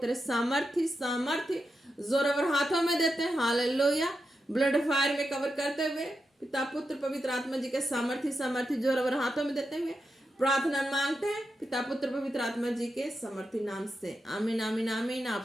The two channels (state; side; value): normal; both; correlation 0.88